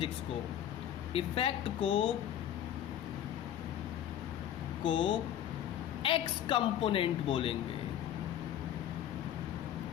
को, इफेक्ट को एक्स कंपोनेंट बोलेंगे।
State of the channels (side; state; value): right; quieter; 10.8 dB